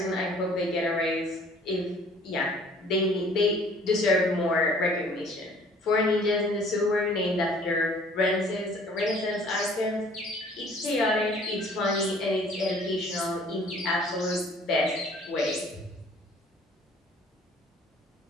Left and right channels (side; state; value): both; normal; correlation 0.54